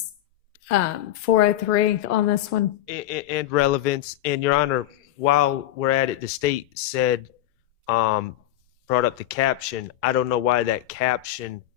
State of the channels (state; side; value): quieter; right; 13.5 dB